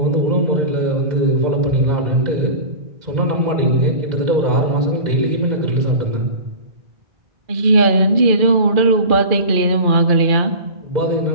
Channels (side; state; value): left; late; 2.4 ms